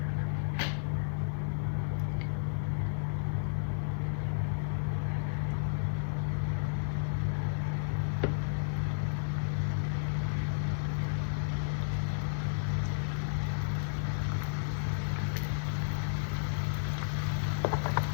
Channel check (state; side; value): silent; right; 56 dB below the other